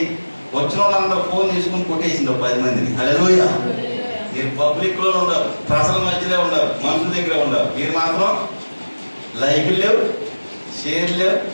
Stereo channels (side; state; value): both; inverted; correlation -1.00